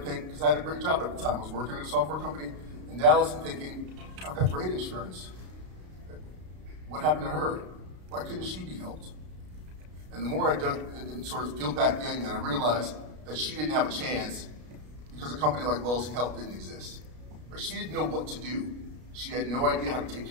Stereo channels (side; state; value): left; late; 33 ms